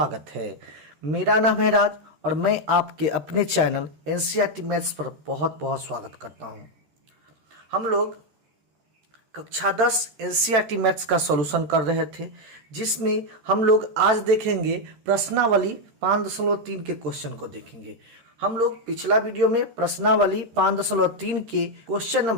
है। मेरा नाम है राज और मैं आपके अपने चैनल एनसीईआरटी मैथ्स पर बहुत बहुत स्वागत करता हूं। हम लोग कक्षा 10 एनसीईआरटी मैथ्स का सॉल्यूशन कर रहे थे, जिसमें हम लोग आज देखेंगे प्रश्नावली 5.3 के क्वेश्चन को देखेंगे। हम लोग पिछला वीडियो में प्रश्नावली 5.3 के क्वेश्चन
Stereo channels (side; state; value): left; late; 13 ms